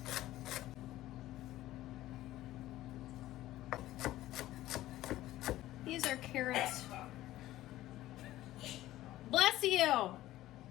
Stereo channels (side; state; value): right; quieter; 15.3 dB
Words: These are carrots. Bless you!